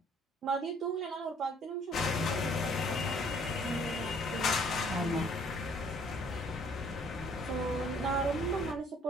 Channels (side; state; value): both; normal; correlation 0.60